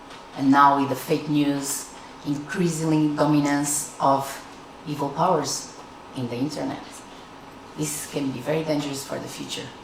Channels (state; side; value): identical; both; correlation 1.00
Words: And now with the fake news, increasingly dominance of evil powers in the internet. This can be very dangerous for the future,